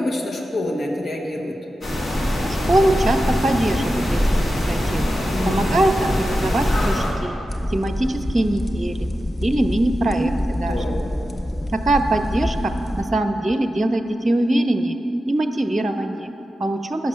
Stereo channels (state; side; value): normal; both; correlation 0.92